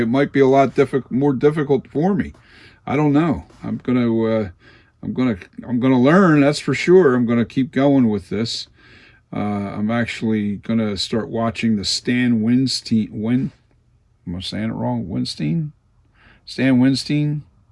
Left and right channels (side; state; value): both; identical; correlation 1.00